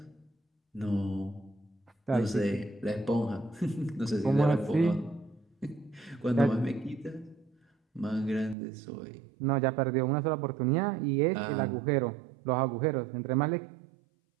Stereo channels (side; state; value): left; drops out; at 8.6 s